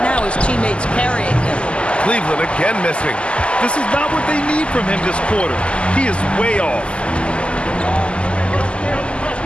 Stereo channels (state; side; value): late; right; 0.053 ms